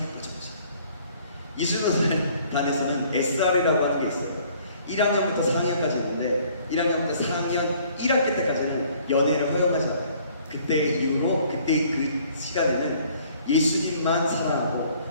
빠져보자. 이수노단에서는 SR이라고 하는 게 있어요. 1학년부터 4학년까지 있는데 1학년부터 4학년 1학기 때까지는 연애를 허용하지 않아요. 그때 이후로 그때 그 시간에는 예수님만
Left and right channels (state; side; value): inverted; both; correlation -0.58